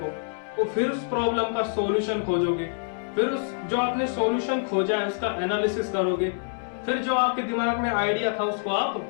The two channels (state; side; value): silent; right; digital silence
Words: तो फिर उस प्रॉब्लम का सॉल्यूशन खोजोगे, फिर उस जो आपने सॉल्यूशन खोजा है उसका एनालिसिस करोगे, फिर जो आपके दिमाग में आइडिया था उसको आप